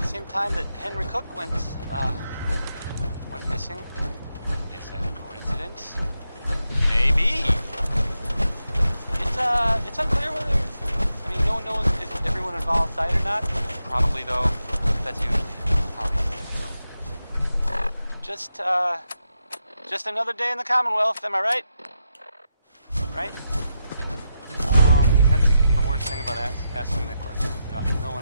same time that Henry Cook went missing. Is that a coincidence? Maybe. It's unclear whether, no one knows if everyone involved died or not. Probably, though. That's usually Just another day in the Commonwealth, am I right? Right? That's the worst thing about asking that question. No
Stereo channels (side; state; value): both; inverted; correlation -0.86